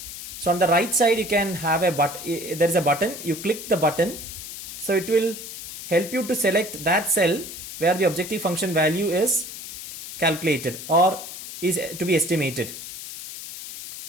So on the right side you can have a button, there is a button, you click the button, so it will help you to select that cell where the objective function value is calculated or is to be estimated.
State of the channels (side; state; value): left; noise; hiss, 10 dB below the sound